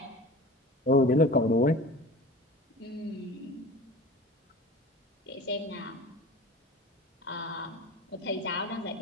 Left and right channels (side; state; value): both; normal; correlation 0.37